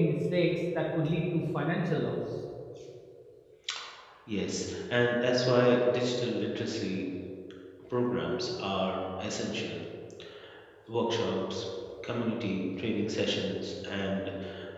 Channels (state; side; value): identical; both; correlation 1.00